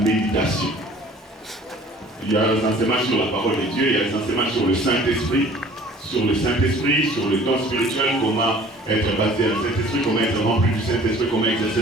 Il y a des enseignements sur la parole de Dieu, il y a des enseignements sur le Saint-Esprit, sur le don spirituel, comment être basé à le Saint-Esprit, comment être rempli du Saint-Esprit, comment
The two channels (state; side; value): normal; both; correlation 0.50